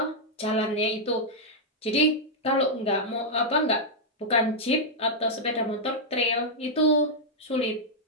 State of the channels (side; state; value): both; normal; correlation -0.05